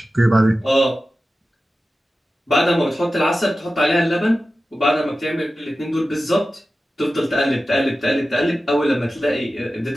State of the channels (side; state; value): both; normal; correlation 0.94